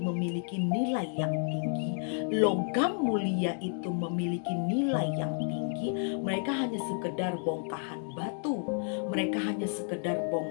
memiliki nilai yang tinggi, logam mulia itu memiliki nilai yang tinggi, mereka hanya sekedar bongkahan batu, mereka hanya sekedar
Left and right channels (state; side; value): silent; right; 57 dB below the other